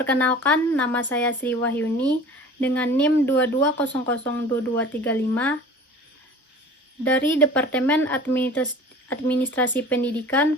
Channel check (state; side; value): normal; both; correlation 0.42